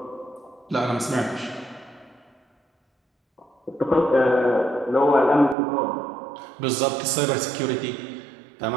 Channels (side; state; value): left; drops out; at 5.6 s